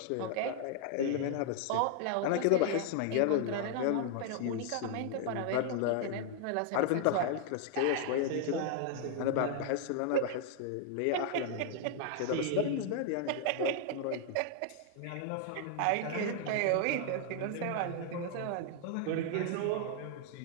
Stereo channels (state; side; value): different; both; correlation 0.00